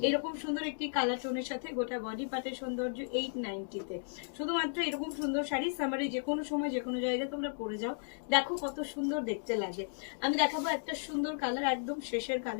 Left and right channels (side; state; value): right; silent; digital silence